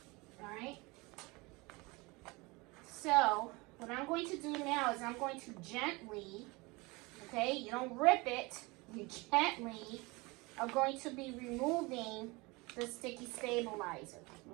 Alright. So what I'm going to do now is I'm going to gently, okay, you don't rip it, you gently are going to be removing the sticky stabilizer.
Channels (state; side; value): quieter; left; 24.9 dB